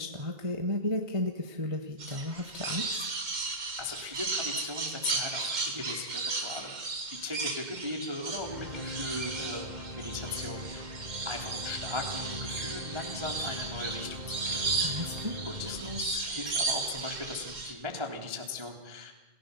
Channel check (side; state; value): left; late; 2.1 ms